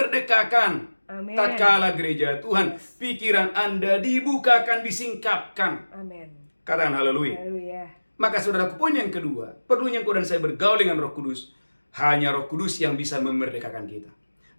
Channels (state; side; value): inverted; both; correlation -1.00